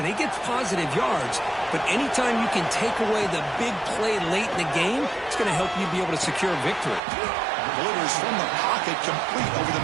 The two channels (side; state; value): left; drops out; at 7.0 s